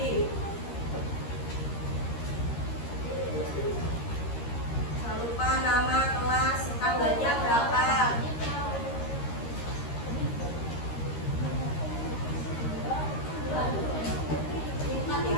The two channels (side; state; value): right; late; 13 ms